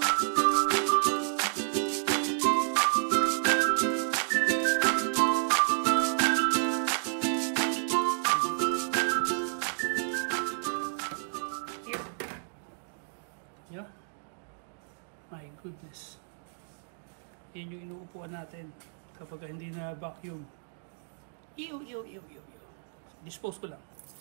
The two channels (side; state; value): left; silent; digital silence